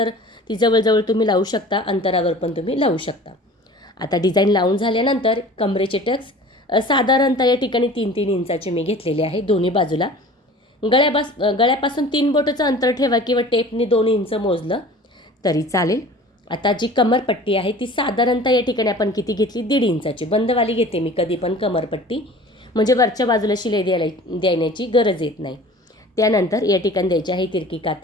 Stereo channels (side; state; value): both; normal; correlation 0.43